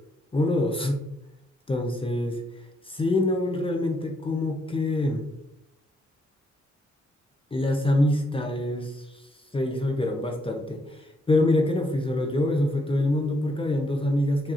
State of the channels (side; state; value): both; normal; correlation 0.75